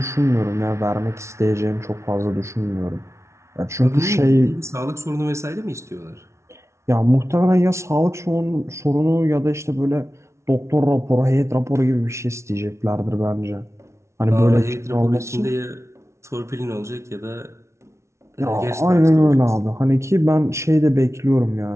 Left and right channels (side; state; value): left; late; 0.13 ms